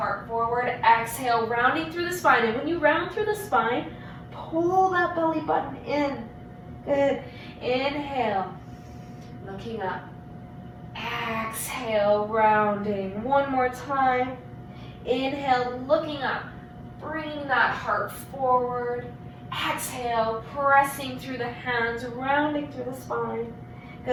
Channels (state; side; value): identical; both; correlation 1.00